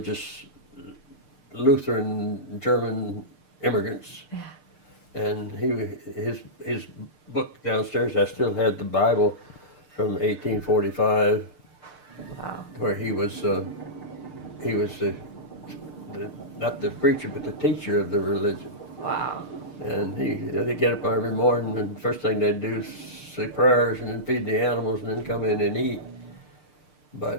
Lutheran German immigrants. Yeah. And his book downstairs, I still had the Bible from 1845, Wow. where he was the not the preacher but the teacher of the religion. Wow. And they get up every morning, and the first thing they'd do is say prayers and then feed the animals and then come in and eat.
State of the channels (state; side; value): late; right; 6.6 ms